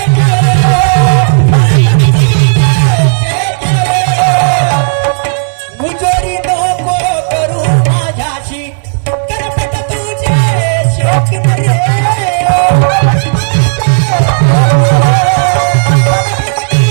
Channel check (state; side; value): silent; left; 73 dB below the other